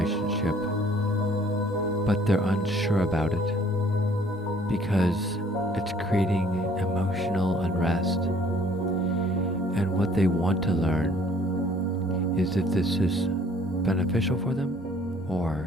but they're unsure about it because it's creating emotional unrest. And what they want to learn is if this is beneficial for them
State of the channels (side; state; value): both; normal; correlation 0.58